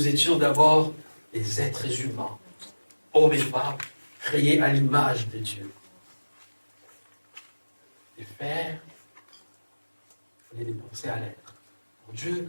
étions d'abord des êtres humains, hommes et femmes, créés à l'image de Dieu. Et faire, il faut les penser à l'être. Pour Dieu,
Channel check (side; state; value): both; inverted; correlation -1.00